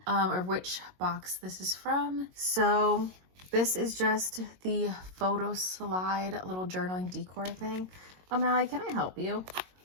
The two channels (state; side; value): late; left; 22 ms